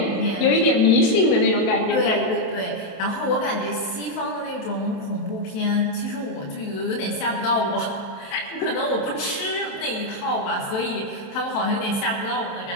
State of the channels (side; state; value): right; late; 27 ms